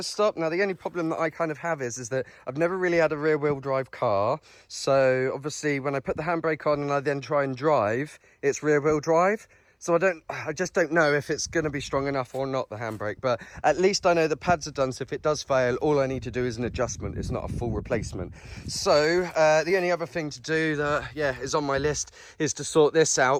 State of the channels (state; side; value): identical; both; correlation 1.00